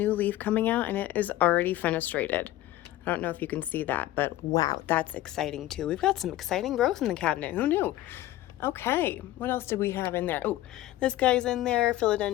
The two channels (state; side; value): quieter; right; 15.3 dB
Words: leaf coming out, and it is already fenestrated. I don't know if you can see that, but wow, that's exciting too. We've got some exciting growth in the cabinet. Who knew? Okay, what else did we have in there? Oh, this guy's in there,